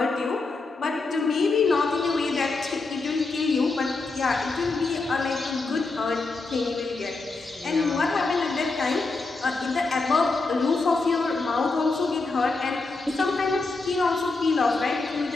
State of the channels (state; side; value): quieter; right; 3.7 dB